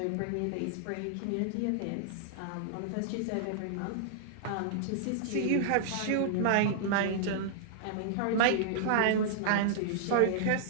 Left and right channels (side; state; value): both; different; correlation -0.01